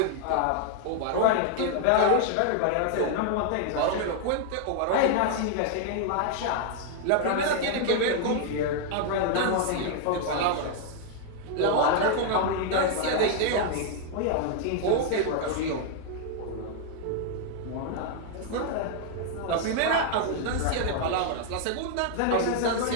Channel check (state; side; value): different; both; correlation 0.00